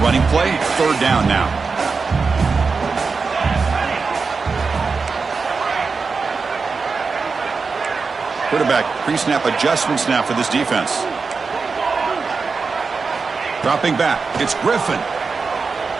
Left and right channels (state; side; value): quieter; left; 4.7 dB